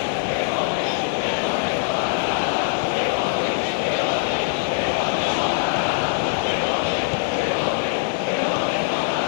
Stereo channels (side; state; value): right; silent; digital silence